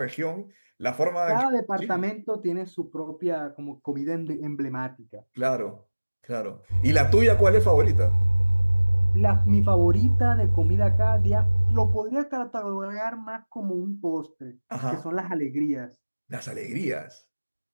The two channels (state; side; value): inverted; both; correlation -1.00